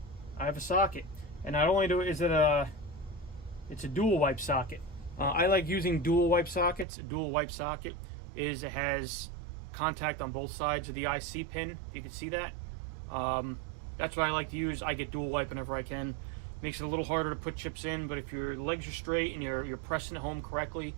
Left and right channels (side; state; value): left; drops out; at 6.9 s